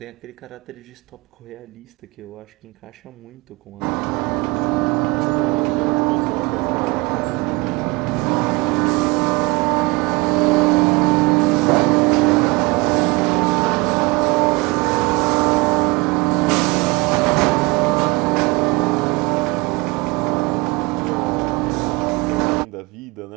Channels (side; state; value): left; quieter; 25.8 dB